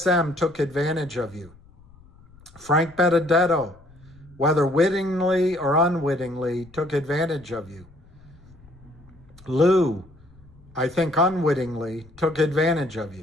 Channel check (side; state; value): left; noise; rumble, 25 dB below the sound